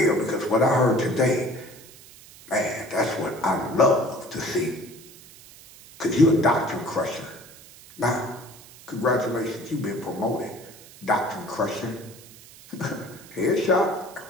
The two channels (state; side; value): noise; right; hiss, 20 dB below the sound